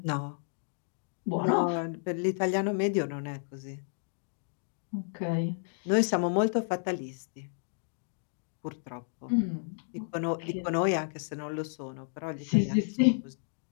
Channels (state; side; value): silent; right; digital silence